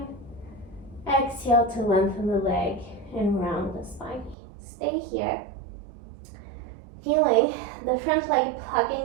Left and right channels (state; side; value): drops out; left; at 4.4 s